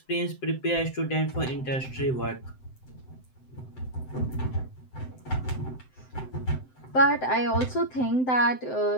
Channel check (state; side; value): late; right; 7.8 ms